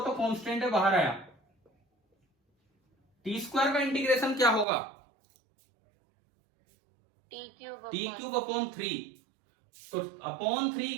तो कांस्टेंट है, बाहर आया, टी स्क्वायर का इंटीग्रेशन क्या होगा? टी क्यूब अपॉन 3, तो अपॉन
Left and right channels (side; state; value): left; drops out; at 4.7 s